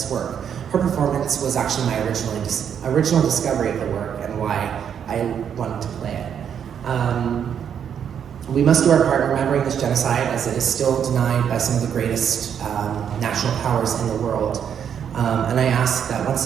work. Her performance was actually my original discovery of the work and why I wanted to play it. We must do our part in remembering this genocide, as it is still denied by some of the greatest national powers in the world. And I ask that once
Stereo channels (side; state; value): left; quieter; 8.3 dB